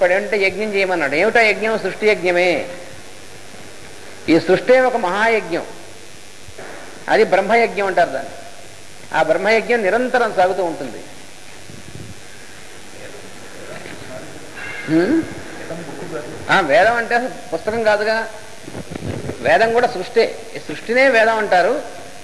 ఏమిటంటే యజ్ఞం చేయమన్నాడు. ఏమిటో యజ్ఞం? సృష్టి యజ్ఞమే. ఈ సృష్టి ఒక మహాయజ్ఞం. అది బ్రహ్మయజ్ఞం అంటారు దాన్ని. ఆ బ్రహ్మయజ్ఞం నిరంతరం సాగుతూ ఉంటుంది. వేదం అంటే పుస్తకం కాదుగా, వేదం కూడా సృష్టి. ఈ సృష్టినే వేదం అంటారు.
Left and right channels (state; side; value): identical; both; correlation 1.00